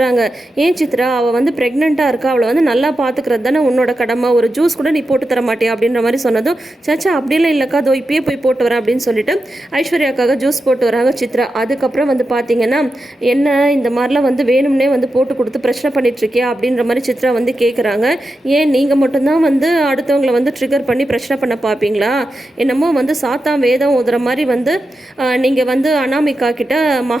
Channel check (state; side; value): normal; both; correlation 0.89